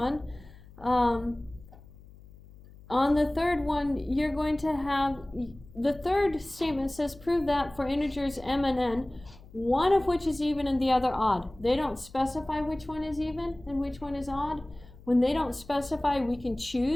On the third one, you're going to have, the third statement says prove that for integers m and n, one of which is even and the other odd. They don't specify which one is even and which one is odd. When they don't specify, we can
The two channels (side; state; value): left; noise; hum, 21 dB below the sound